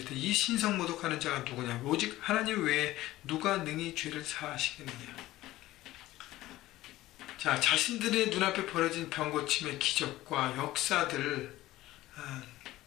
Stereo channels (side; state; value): right; quieter; 16.4 dB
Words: 이 신성 모독하는 자가 누구냐? 오직 하나님 외에 누가 능히 죄를 사하시겠느냐? 자, 자신들의 눈앞에 벌어진 병고침의 기적과 역사들